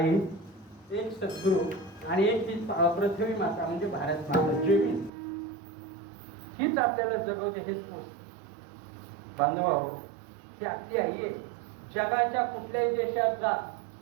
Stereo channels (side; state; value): left; drops out; at 5.1 s